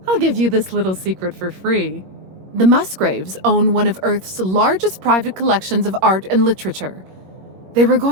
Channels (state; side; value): late; left; 21 ms